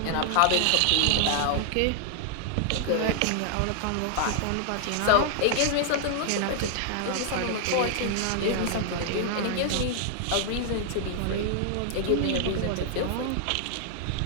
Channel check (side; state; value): both; different; correlation 0.00